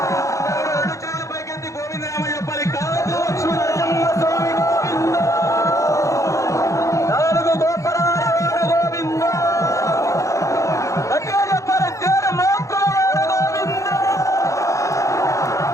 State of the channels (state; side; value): late; right; 0.15 ms